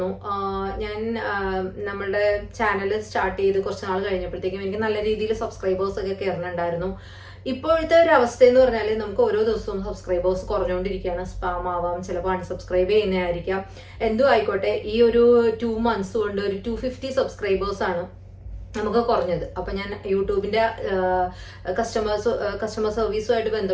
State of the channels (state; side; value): identical; both; correlation 1.00